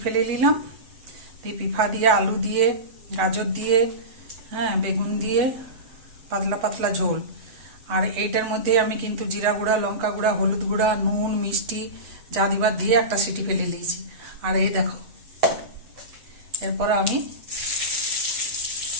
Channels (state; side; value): late; left; 8.0 ms